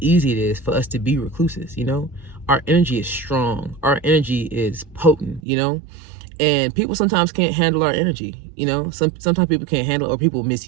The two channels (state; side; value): drops out; left; at 5.4 s